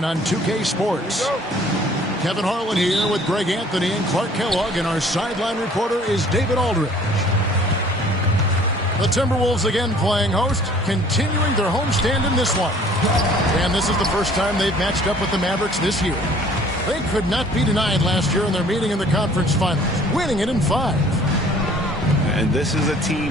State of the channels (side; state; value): both; normal; correlation 0.54